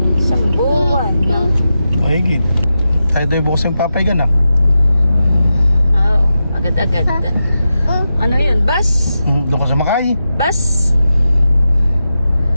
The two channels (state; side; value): inverted; both; correlation -0.90